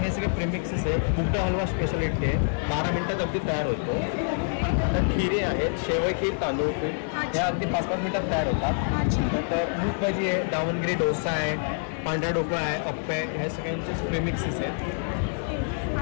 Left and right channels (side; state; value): right; silent; 58 dB below the other